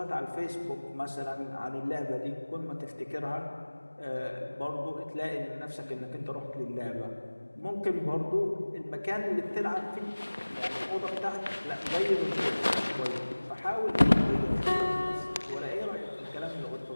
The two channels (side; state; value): both; inverted; correlation -1.00